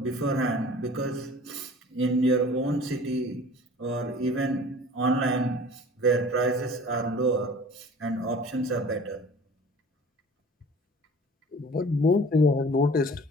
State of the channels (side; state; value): both; normal; correlation 0.45